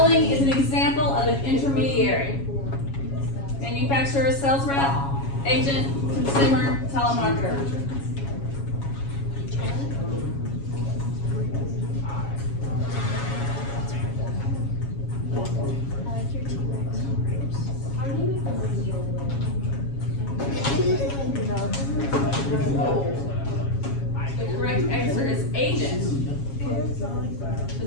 is an example of an intermediary? Manufacturer, sales rep, agent, consumer, telemarketer. The correct answer is agent. The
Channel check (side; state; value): right; late; 7.3 ms